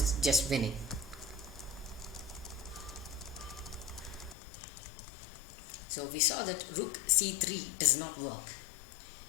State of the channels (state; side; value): drops out; right; at 4.4 s